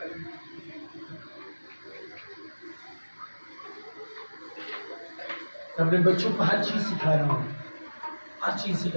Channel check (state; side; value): inverted; both; correlation -1.00